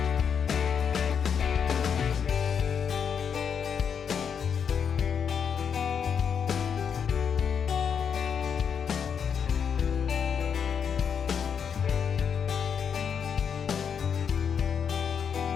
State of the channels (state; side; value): quieter; right; 7.2 dB